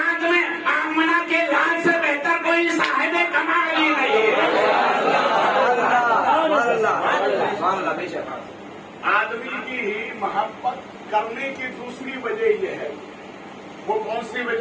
میں آمنہ کے لال سے بہتر کوئی صاحب کمال ہی نہیں ہے. آدمی کی ہی محبت کرنے کی دوسری وجہ یہ ہے. وہ کون سی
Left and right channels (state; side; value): identical; both; correlation 1.00